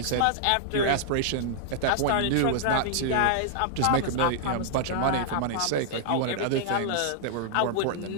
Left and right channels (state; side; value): different; both; correlation -0.01